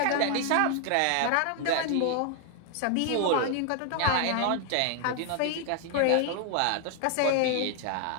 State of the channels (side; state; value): both; different; correlation 0.00